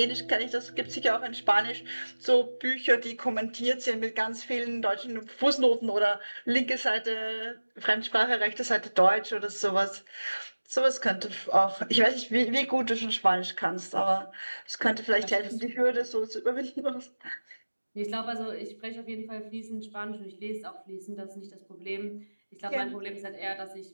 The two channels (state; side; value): inverted; both; correlation -1.00